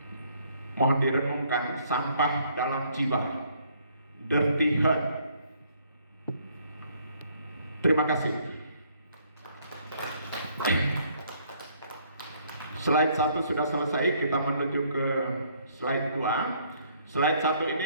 Mohon direnungkan, sampah dalam jiwa, dirty heart. Terima kasih. Slide 1 sudah selesai, kita menuju ke slide 2. Slide 1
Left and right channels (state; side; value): inverted; both; correlation -0.65